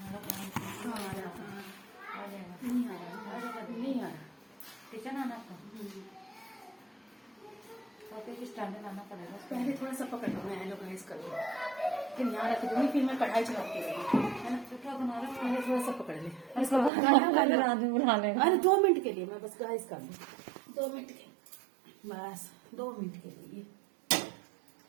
आ रहा। किचन आना आपका तो स्टैंडर्ड आना पड़ेगा। पहले थोड़ा सा पकड़ लो, मैं हेलो गाइस कर लूँ, फिर यहाँ रख दूँगी, फिर मैं कढ़ाई चढ़ाती रहूँगी, है ना? तो क्या बना रहे हो? पहले थोड़ा सा पकड़ ले। आदमी बुला लेगा। अरे 2 मिनट के लिए मैं बस गाइस कर लूँ, 2 मिनट के, बस 2 मिनट के लिए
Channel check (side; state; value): left; drops out; at 16.9 s